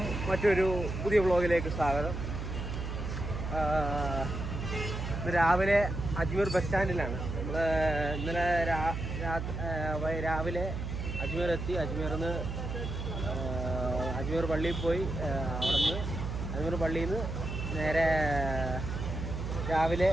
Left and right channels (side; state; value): right; noise; hum, 5 dB below the sound